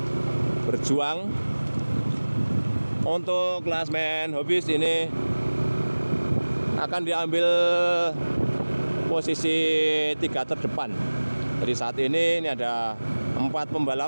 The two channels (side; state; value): both; inverted; correlation -1.00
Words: berjuang untuk klasmen hobbies. Ini akan diambil posisi 3 terdepan. Jadi saat ini ada 4